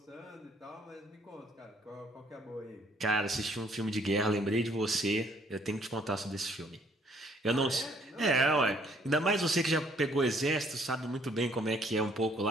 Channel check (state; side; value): normal; both; correlation 0.63